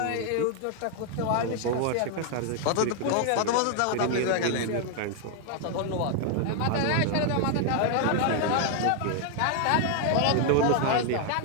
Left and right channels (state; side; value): different; both; correlation 0.00